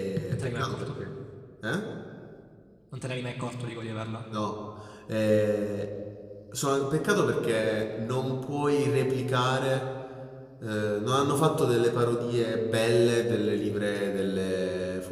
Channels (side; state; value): both; identical; correlation 1.00